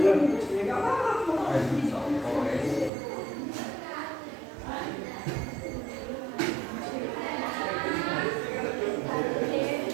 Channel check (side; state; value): left; drops out; at 2.9 s